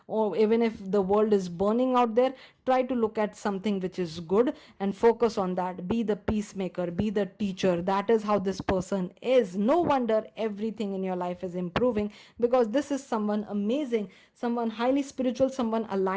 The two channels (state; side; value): identical; both; correlation 1.00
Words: Or even if the world is burning out there, try to look at something which is good and focus on that. Be the peacemaker, be the teacher. That is how this person is. No wonder everything in your life is improving, because this is someone amazing, someone highly spiritual, someone